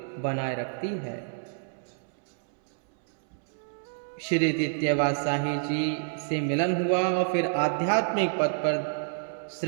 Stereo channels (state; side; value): silent; left; 59 dB below the other